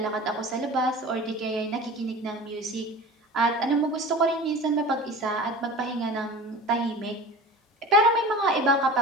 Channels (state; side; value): normal; both; correlation 0.36